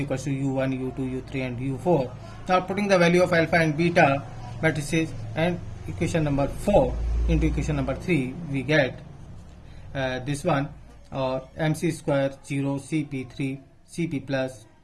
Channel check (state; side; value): identical; both; correlation 1.00